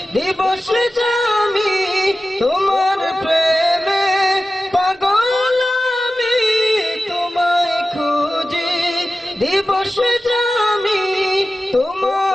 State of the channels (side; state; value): both; normal; correlation 0.95